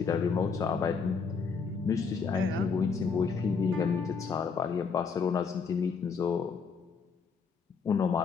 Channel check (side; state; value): right; quieter; 5.4 dB